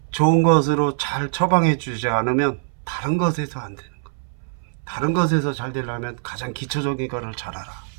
좋은 것으로 잘 처방해 주지 않으면 다른 것에서 안 되는 거. 다른 것에서 잘 되려면 가장 기초적인 거를 잘 알아.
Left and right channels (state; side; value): silent; left; 64 dB below the other